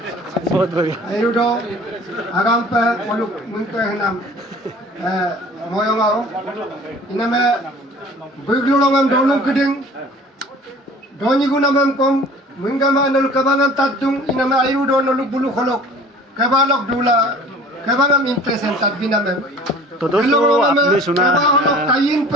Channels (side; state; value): both; normal; correlation 0.46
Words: बहुत बढ़िया. Ayudo, agam pa poluk munto henam moyong ao. Iname buglo ngam dolung keding. Doni guna mem kom mungama nol kabangan tatung iname ayudo nol bulu kholok. Kabalok dula kabangam impresen tat binamem. तो दोस्तों आपने सुना